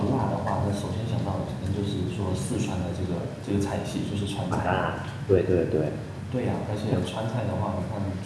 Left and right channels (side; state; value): both; identical; correlation 1.00